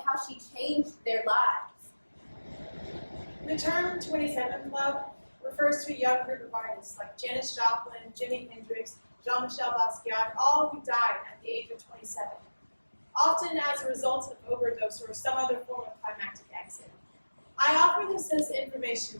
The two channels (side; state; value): both; inverted; correlation -1.00